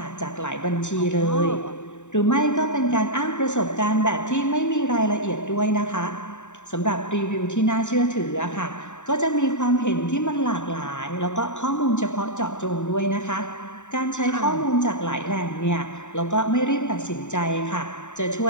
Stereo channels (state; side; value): late; right; 0.84 ms